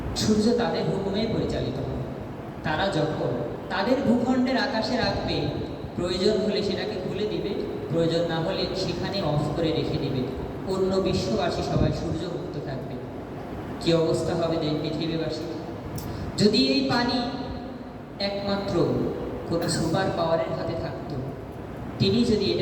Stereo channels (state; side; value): identical; both; correlation 1.00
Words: সূর্য তাদের হুকুমে পরিচালিত হবে। তারা যখন তাদের ভূখণ্ডের আকাশে রাখবে, প্রয়োজন হলে সেটাকে খুলে দিবে, প্রয়োজন না হলে সেখানে অফ করে রেখে দিবে। অন্য বিশ্ববাসী সবাই সূর্যমুক্ত থাকবে। কি অবস্থা হবে পৃথিবীবাসী? যদি এই পানি একমাত্র কোনো সুপার পাওয়ারের হাতে থাকতো, তিনি যদি